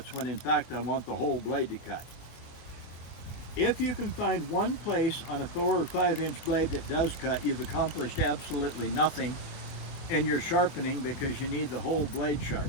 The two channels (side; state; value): right; late; 24 ms